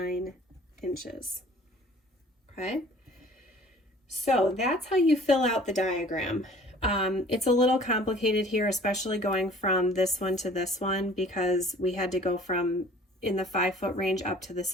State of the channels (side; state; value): both; normal; correlation 0.50